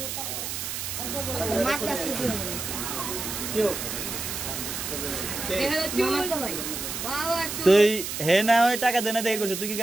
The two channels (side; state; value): right; noise; hiss, 5 dB below the sound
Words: তুই হে না ওই টাকা দেনা দেখে করছিস, তুই কি